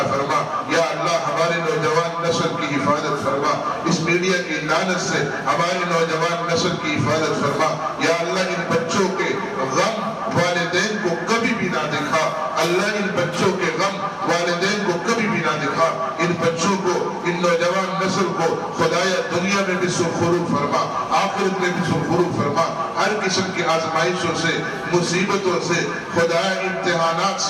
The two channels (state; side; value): identical; both; correlation 1.00